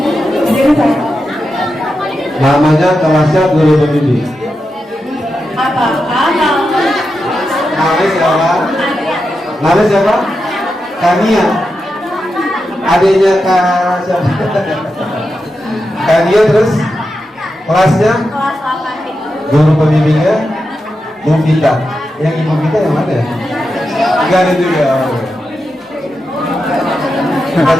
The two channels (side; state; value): both; normal; correlation 0.88